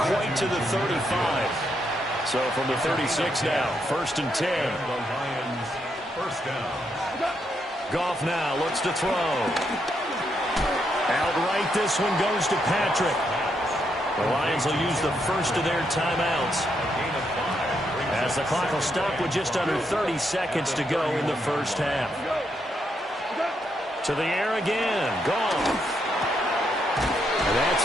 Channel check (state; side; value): normal; both; correlation 0.79